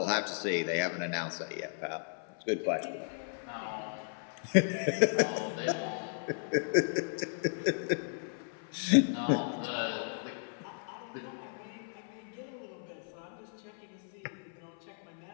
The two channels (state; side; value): silent; right; 55 dB below the other